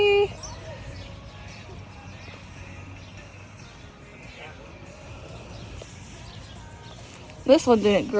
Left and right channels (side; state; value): both; identical; correlation 1.00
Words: This one didn't